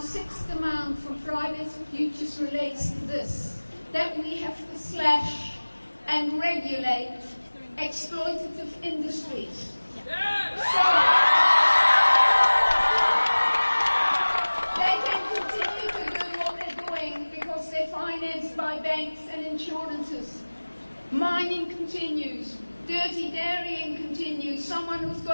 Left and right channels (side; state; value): both; inverted; correlation -1.00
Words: sixth demand from Fridays for Futures relates to this, that we have to slash and regulate exploitative industries. So they can continue to do what they're doing because they're financed by banks and insurances. Mining continues. Dirty dairying continues. Someone who's